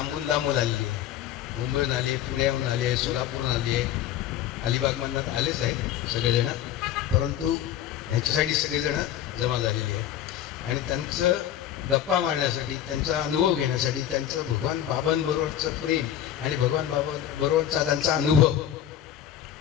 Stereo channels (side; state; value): right; quieter; 10.9 dB